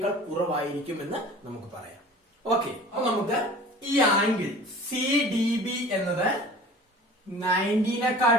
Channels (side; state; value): both; normal; correlation 0.43